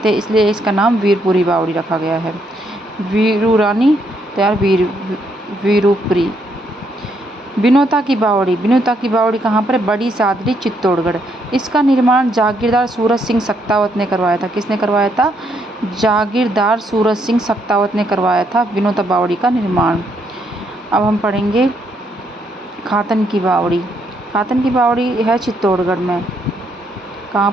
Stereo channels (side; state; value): both; normal; correlation 0.74